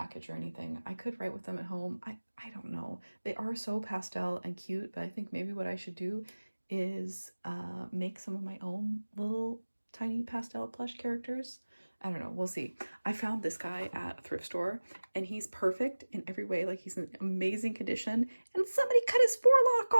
or anything. I could write with them at home. I don't know. They are so pastel and cute, but I think maybe what I should do is make some of my own little tiny pastel plush characters. I don't know. We'll see. I found this guy at a thrift store, and he's perfect in every way. Like, he's in amazing condition, and somebody cut his forelock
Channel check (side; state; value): both; inverted; correlation -1.00